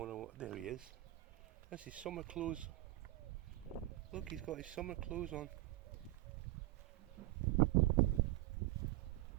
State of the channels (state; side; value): quieter; left; 18.0 dB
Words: There he is. That's his summer clothes. Look, he's got his summer clothes on.